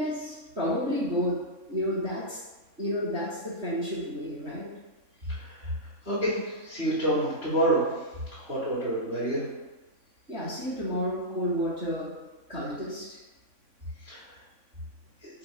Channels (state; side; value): late; left; 3.6 ms